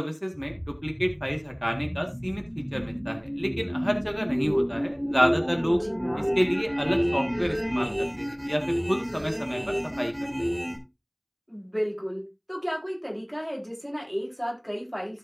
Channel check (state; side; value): identical; both; correlation 1.00